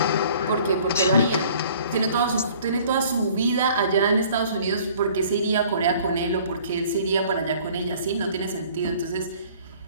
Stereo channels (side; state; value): both; inverted; correlation -0.53